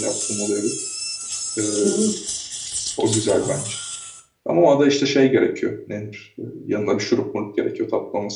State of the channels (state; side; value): identical; both; correlation 1.00